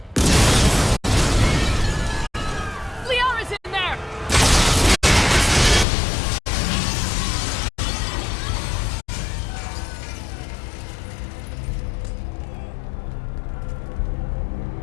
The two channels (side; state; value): right; drops out; at 5.9 s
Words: Liara's in there!